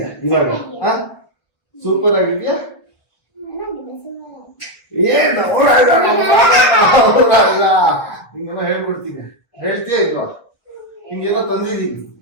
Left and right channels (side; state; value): right; late; 1.1 ms